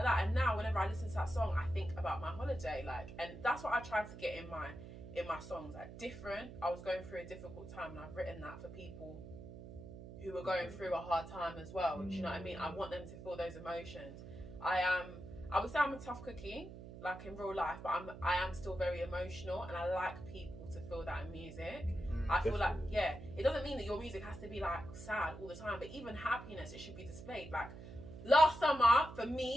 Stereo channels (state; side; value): noise; right; hum, 13 dB below the sound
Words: that, and now whenever I listen to that song, I think about my holiday, like, and that's what I try to get in in my songs, like different. I was going through a difficult time, and I've written that for people who are going through a hard time as well. Do you know what I mean? I want them to feel those emotions. I would say I'm a tough cookie, like in real life, but I am still very emotional, and I like people to feel that in music. I feel like, yeah, it doesn't mean that your music has to be like sad all the time, but even happiness, it should be displayed. Like last summer, for